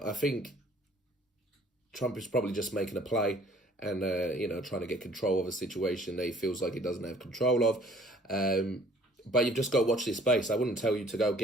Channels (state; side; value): normal; both; correlation 0.56